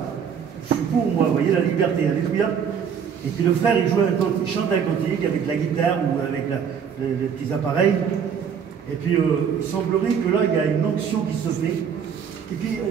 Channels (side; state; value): left; quieter; 7.4 dB